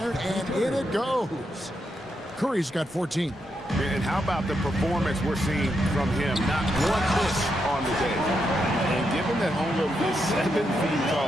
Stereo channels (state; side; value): normal; both; correlation 0.82